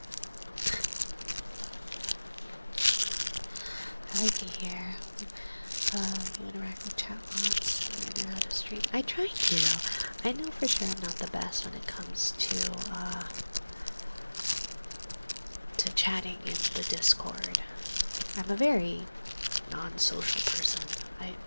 I like it here. You interact with chat bots, you know how to stream. I try to. I know for sure I'm not the best when it comes to chatting in the Discord. I'm a very non-social person. I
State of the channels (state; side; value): inverted; both; correlation -1.00